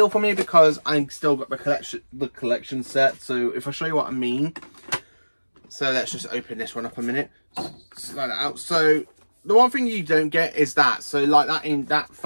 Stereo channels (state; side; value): inverted; both; correlation -1.00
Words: for me because I've still got the collection set. So if I show you what I mean, so let's just open this one up a minute. Slide it out. So the one thing you don't get is that. So like that, in that